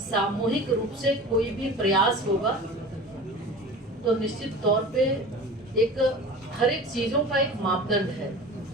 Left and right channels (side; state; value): both; normal; correlation 0.37